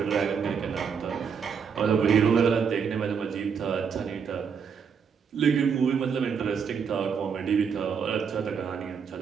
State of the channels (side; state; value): left; quieter; 6.6 dB